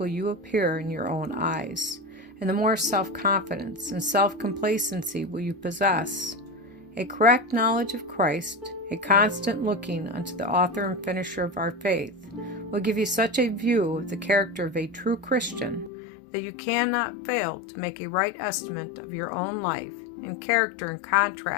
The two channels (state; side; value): drops out; right; at 15.9 s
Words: you appear in your own eyes, and the more self-confidence and self-complacency will you possess. A correct knowledge of Christ, a constant looking unto the author and finisher of our faith, will give you such a view of the character of a true Christian that you cannot fail to make a right estimate of your own life and character in